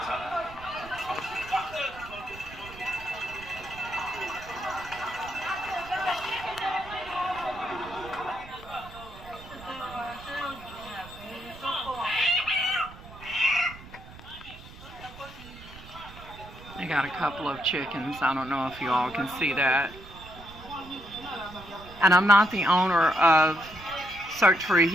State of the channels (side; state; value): right; noise; rumble, 17 dB below the sound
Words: time. They got a couple of chickens. I don't know if you all can see that. And I'm not the owner of Search for